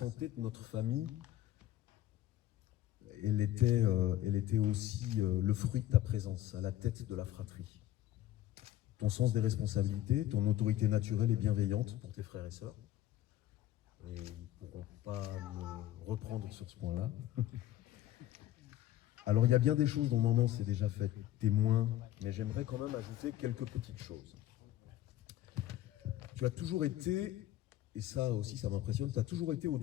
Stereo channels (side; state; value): right; quieter; 13.6 dB